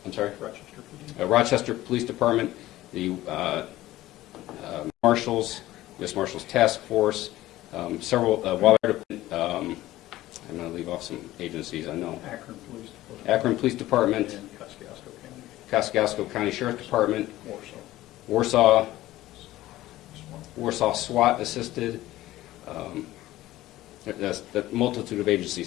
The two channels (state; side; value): quieter; right; 15.9 dB